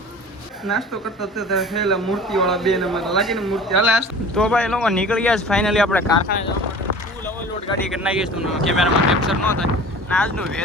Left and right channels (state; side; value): normal; both; correlation 0.41